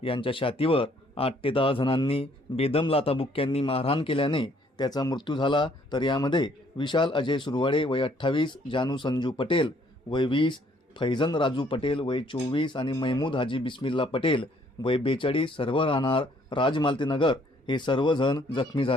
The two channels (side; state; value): both; normal; correlation 0.64